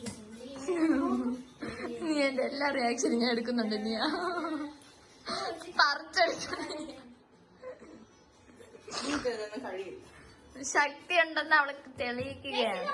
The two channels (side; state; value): both; identical; correlation 1.00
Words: നീ എന്റെ എല്ലാ റിയാക്ഷനും ഞാൻ എടുക്കുന്നുണ്ട്. നീ കഴിയില്ല. ശക്തി ഉണ്ടെന്ന് അവൾക്ക് തെളിയിക്കുകയാണ്.